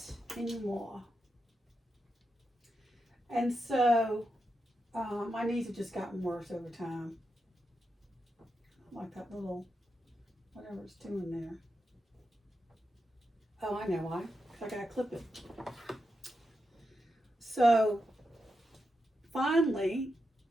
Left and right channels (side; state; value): both; normal; correlation 0.87